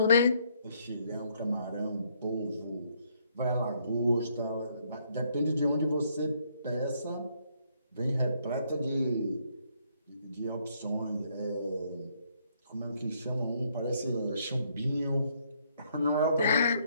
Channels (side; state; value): both; inverted; correlation -0.69